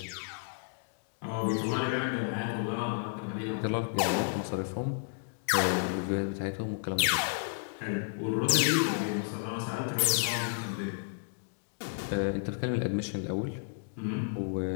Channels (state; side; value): silent; right; digital silence